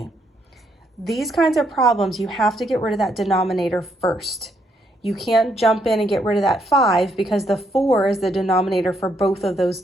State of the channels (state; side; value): normal; both; correlation 0.74